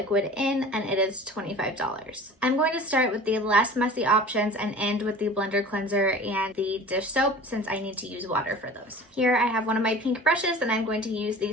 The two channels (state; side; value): normal; both; correlation 0.41